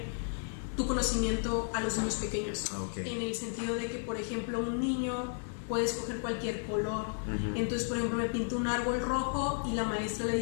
tu conocimiento a los niños pequeños, en el sentido de que, por ejemplo, un niño puede escoger cualquier color. Entonces, por ejemplo, me pinto un árbol rojo y la maestra le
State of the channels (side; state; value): right; silent; digital silence